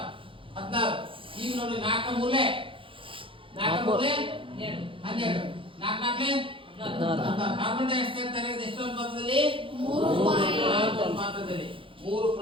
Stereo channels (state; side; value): late; left; 0.25 ms